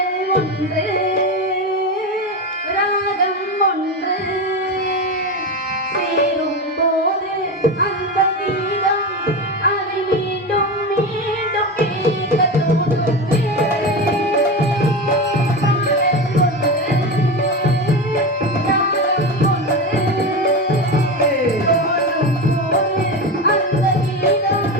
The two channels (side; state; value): both; normal; correlation 0.20